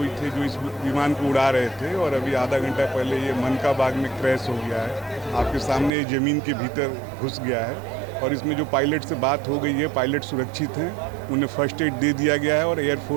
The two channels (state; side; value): drops out; left; at 5.9 s